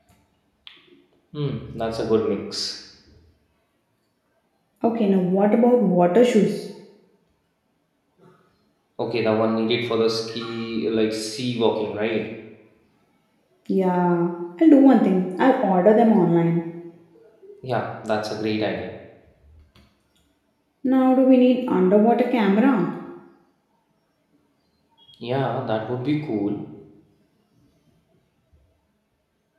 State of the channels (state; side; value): identical; both; correlation 1.00